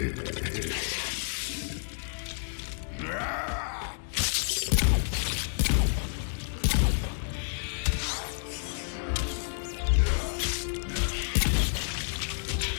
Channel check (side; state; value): right; silent; digital silence